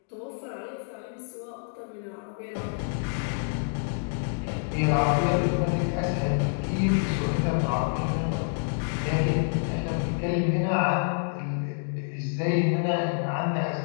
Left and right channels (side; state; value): right; silent; digital silence